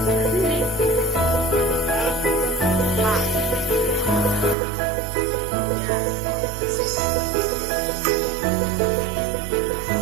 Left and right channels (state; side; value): drops out; left; at 4.5 s